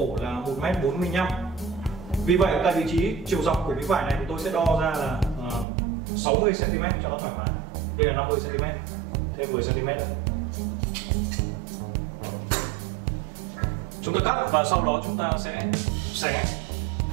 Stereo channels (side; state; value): left; drops out; at 5.7 s